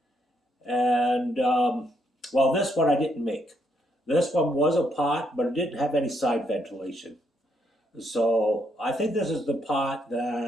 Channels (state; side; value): normal; both; correlation 0.75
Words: And well, this one I didn't make. This one was a pot, but it didn't have any side ventilation. So I think this is the pot